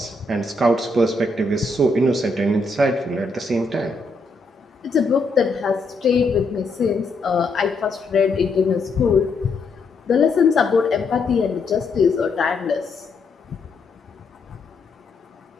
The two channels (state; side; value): quieter; right; 3.2 dB